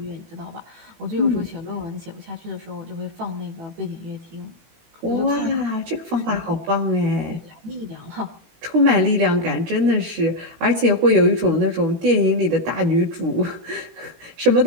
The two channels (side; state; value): left; late; 18 ms